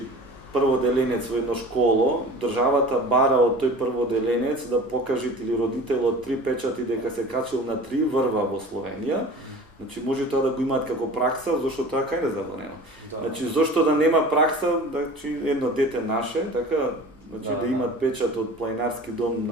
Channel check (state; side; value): normal; both; correlation 0.40